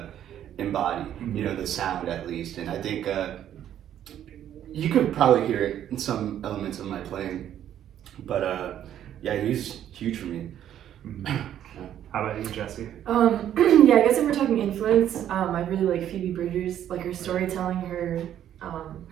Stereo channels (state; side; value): quieter; left; 10.8 dB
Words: embody. You know, the sound at least. And I think you could probably hear it in some elements of my playing, but yeah, he's huge for me. How about you, Jessie? Yeah, I guess if we're talking influence, I really like Phoebe Bridgers, like her storytelling,